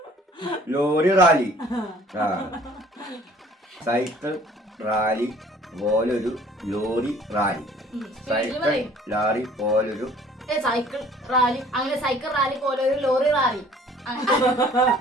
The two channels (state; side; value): normal; both; correlation 0.53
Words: Lorry rally. ആ സൈക്കിൾ റാലി പോലൊരു ലോറി റാലി. സൈക്കിൾ ലാറി പോലൊരു സൈക്കിൾ റാലി അങ്ങനെ സൈക്കിൾ റാലി പോലൊരു ലോറി റാലി.